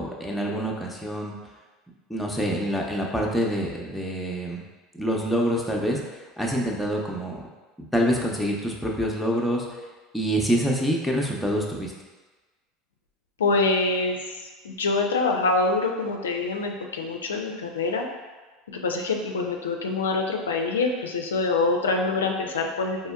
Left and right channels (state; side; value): normal; both; correlation 0.21